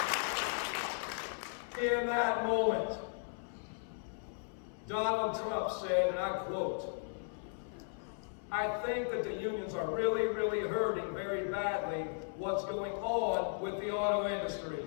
In that moment, Donald Trump said, and I quote, "I think that the unions are really, really hurting very badly what's going on with the auto industry,"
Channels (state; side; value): silent; right; 54 dB below the other